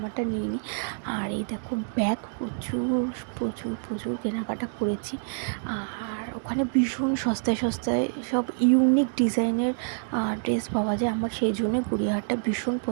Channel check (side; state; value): left; silent; digital silence